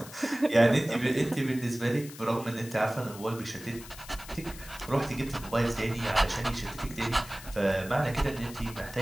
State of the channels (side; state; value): left; noise; hiss, 16 dB below the sound